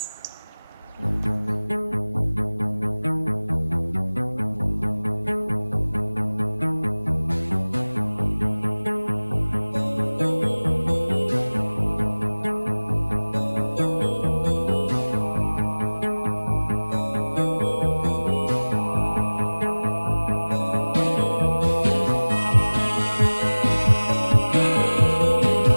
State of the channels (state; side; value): inverted; both; correlation -1.00